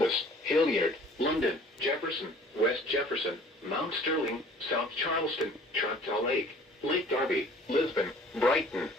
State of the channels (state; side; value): normal; both; correlation 0.51